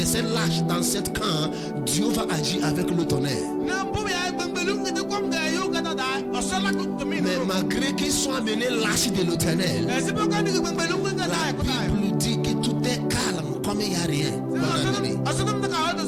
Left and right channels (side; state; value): both; identical; correlation 1.00